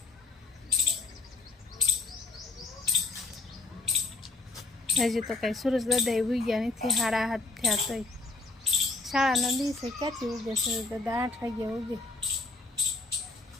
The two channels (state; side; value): quieter; right; 3.5 dB